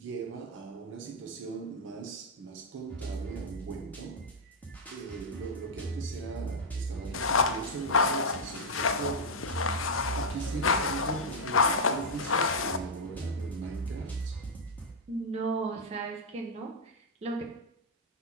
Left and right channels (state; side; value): normal; both; correlation -0.04